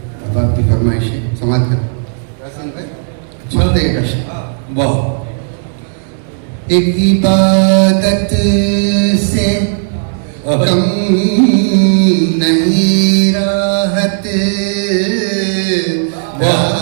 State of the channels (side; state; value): left; silent; digital silence